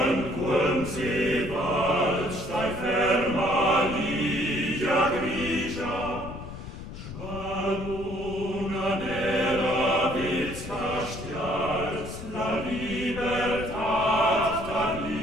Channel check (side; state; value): left; noise; rumble, 11 dB below the sound